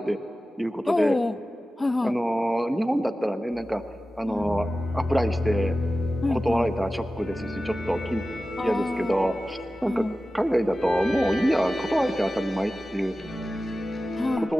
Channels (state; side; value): normal; both; correlation 0.95